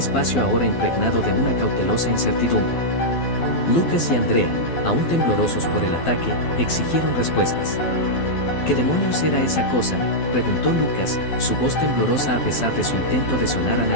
ahora impregnado de una cautelosa incertidumbre. Lucas y Andrea, aún temblorosos por el ataque, exigieron respuestas. ¿Qué demonios era esa cosa?, preguntó Lucas, su voz temblorosa a pesar de su intento de sonar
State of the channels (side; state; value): right; late; 12 ms